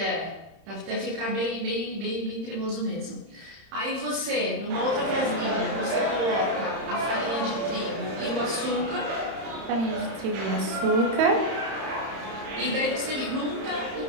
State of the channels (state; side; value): late; left; 31 ms